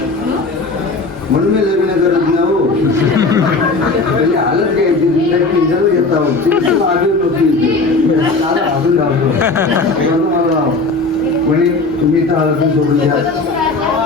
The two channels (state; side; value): quieter; right; 3.5 dB